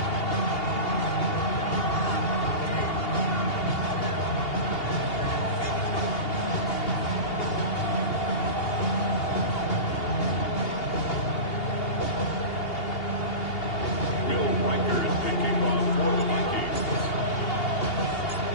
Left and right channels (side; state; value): right; late; 2.8 ms